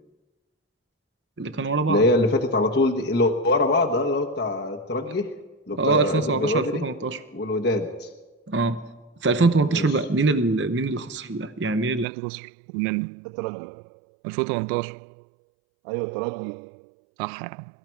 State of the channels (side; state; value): left; drops out; at 12.1 s